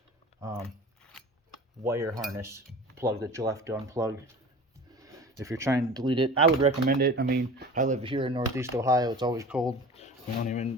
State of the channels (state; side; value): normal; both; correlation 0.38